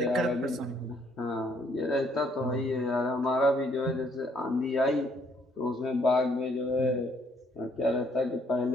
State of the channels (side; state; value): both; normal; correlation 0.67